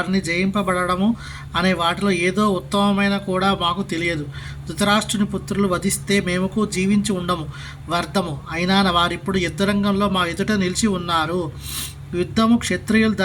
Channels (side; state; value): both; identical; correlation 1.00